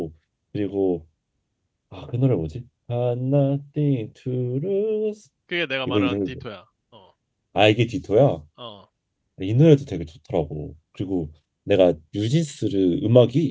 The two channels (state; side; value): identical; both; correlation 1.00